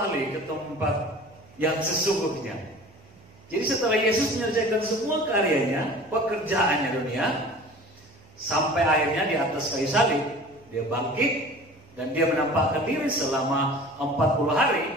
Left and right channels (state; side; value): noise; right; hum, 27 dB below the sound